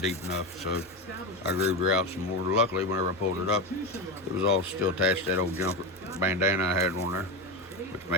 deep enough, so I grooved her out some more. Luckily, whenever I pulled it up, it was all still attached to that old jumper bandana I had on there, which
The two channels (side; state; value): both; normal; correlation 0.17